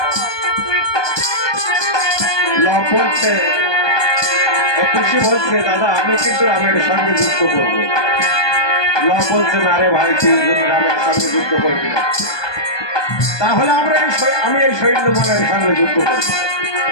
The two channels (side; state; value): right; late; 1.2 ms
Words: বলছে, খুশি বলছে, দাদা আমি কিন্তু রামের সঙ্গে যুদ্ধ করবো। বলছে, না রে ভাই, তুই রামের সঙ্গে যুদ্ধ করবি না, তাহলে আমি এই সৈন্য বলের সঙ্গে যুদ্ধ করবো।